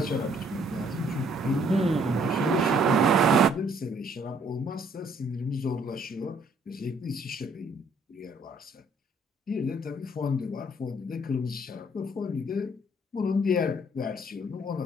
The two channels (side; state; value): both; normal; correlation 0.64